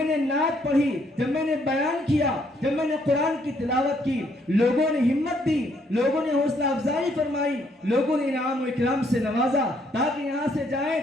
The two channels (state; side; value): normal; both; correlation 0.69